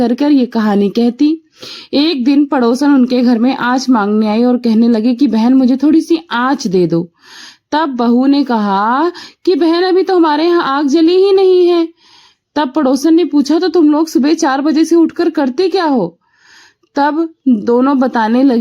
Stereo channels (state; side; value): identical; both; correlation 1.00